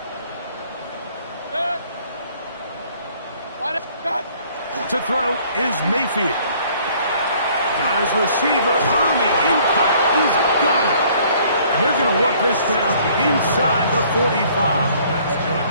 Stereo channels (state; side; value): inverted; both; correlation -0.58